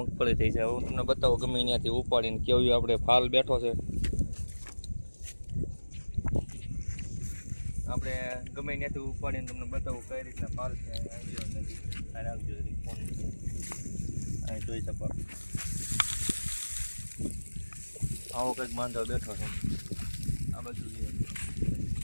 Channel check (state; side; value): inverted; both; correlation -1.00